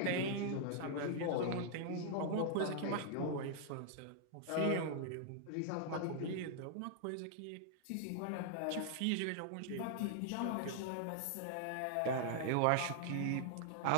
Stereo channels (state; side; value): different; both; correlation 0.00